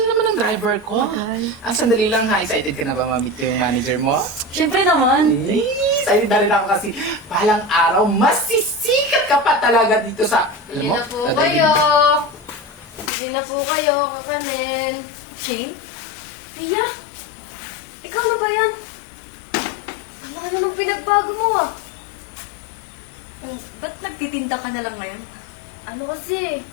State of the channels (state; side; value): drops out; right; at 13.1 s